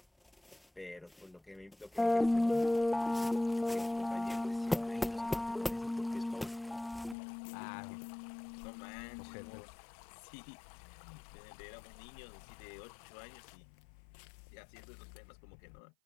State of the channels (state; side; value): drops out; right; at 7.2 s